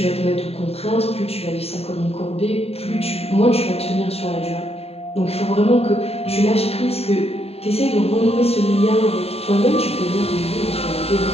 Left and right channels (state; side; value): late; right; 0.29 ms